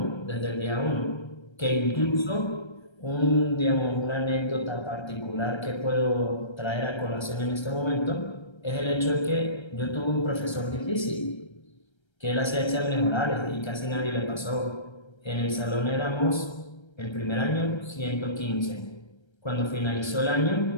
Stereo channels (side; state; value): right; late; 1.3 ms